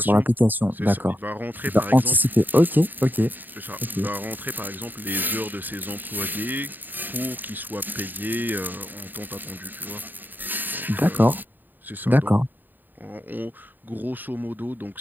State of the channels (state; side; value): late; left; 0.090 ms